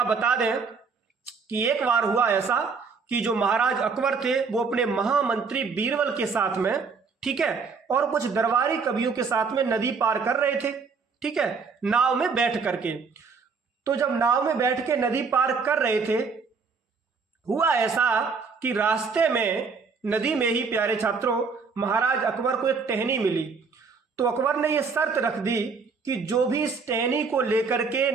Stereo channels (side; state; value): left; quieter; 5.0 dB